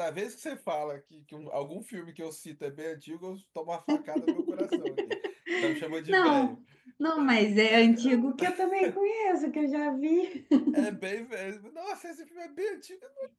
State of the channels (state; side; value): identical; both; correlation 1.00